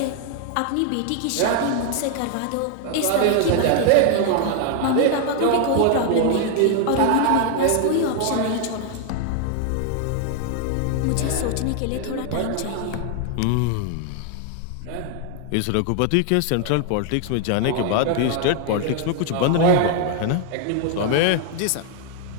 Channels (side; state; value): both; different; correlation 0.00